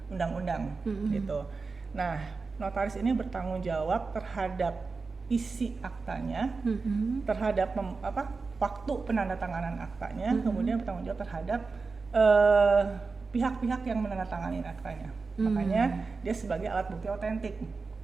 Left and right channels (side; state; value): left; quieter; 4.3 dB